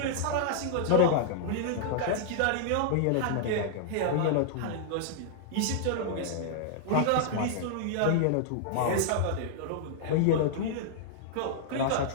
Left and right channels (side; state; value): both; different; correlation -0.01